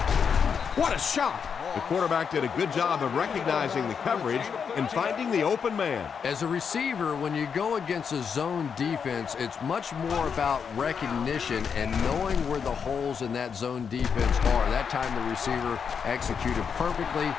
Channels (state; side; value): quieter; right; 6.6 dB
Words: What a shot! The quarterback did a good job of recognizing the coverage and finding the open man. As a receiver, when you go against a zone defense, it's much more about recognition and knowing where the holes in that zone defense are. That time the receiver executed perfectly